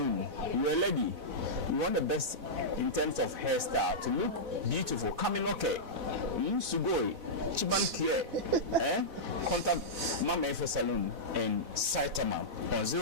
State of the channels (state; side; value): late; left; 4.1 ms